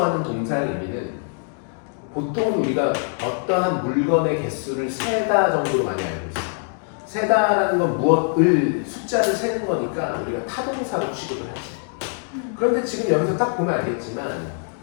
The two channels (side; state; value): right; silent; 55 dB below the other